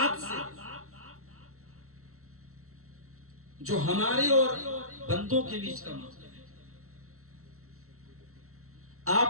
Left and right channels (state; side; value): late; left; 0.63 ms